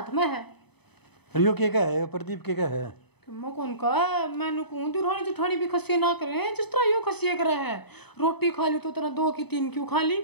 में है। रियो के क्या है, प्रदीप के क्या है, मैं कौन का मैंने कहूँ दुरानी जुठानी भी खसिया ना करे जिस तरह यो खसिया करे है, रोटी खा ली तो तेरा 2 की 3 क्यों खा ली,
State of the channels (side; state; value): right; late; 0.98 ms